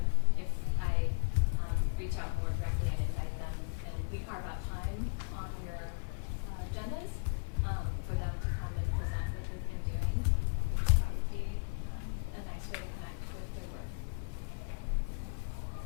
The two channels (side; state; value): right; silent; 54 dB below the other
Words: if I reach out more directly and invite them, and we carve out time on your agendas for them to come and present what they've been doing, that would be a nice way to connect with their work.